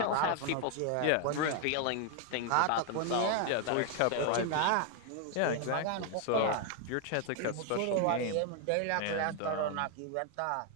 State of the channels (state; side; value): different; both; correlation 0.01